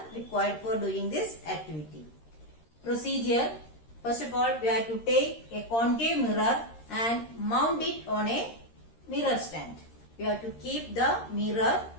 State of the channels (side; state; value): right; late; 13 ms